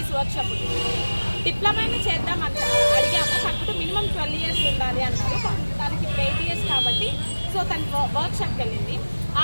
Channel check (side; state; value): both; inverted; correlation -1.00